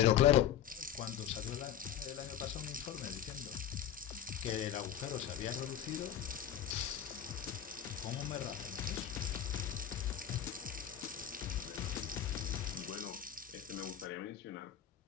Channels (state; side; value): quieter; right; 10.0 dB